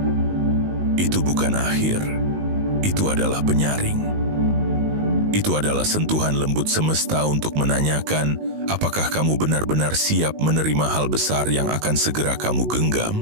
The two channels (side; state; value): left; late; 19 ms